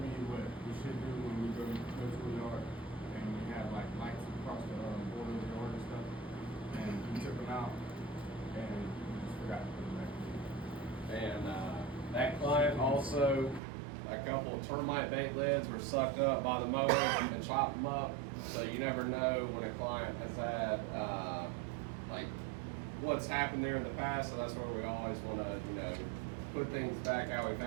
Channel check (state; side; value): drops out; left; at 13.6 s